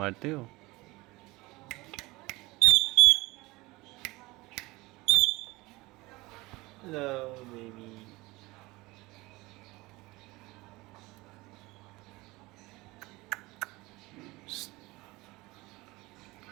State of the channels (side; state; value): left; quieter; 21.7 dB